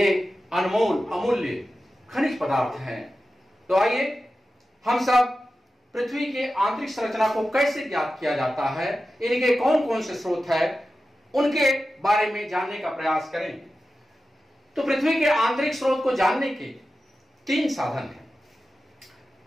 अनमोल अमूल्य खनिज पदार्थ हैं। तो आइए हम सब पृथ्वी के आंतरिक संरचना को कैसे ज्ञात किया जाता है, इनके कौन कौन से स्रोत है, उनके बारे में जानने का प्रयास करें। तो पृथ्वी के आंतरिक स्रोत को जानने के 3 साधन हैं।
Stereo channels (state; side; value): normal; both; correlation 0.93